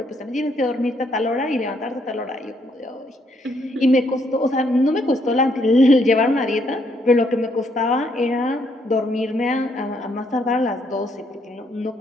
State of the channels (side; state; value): both; normal; correlation 0.72